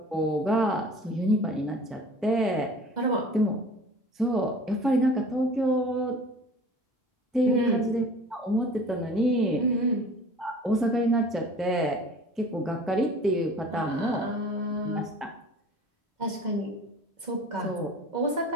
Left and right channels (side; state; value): both; normal; correlation 0.44